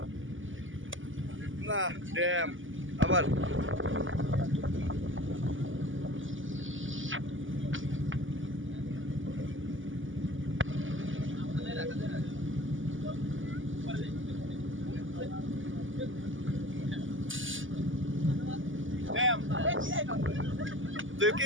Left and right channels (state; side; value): late; left; 0.57 ms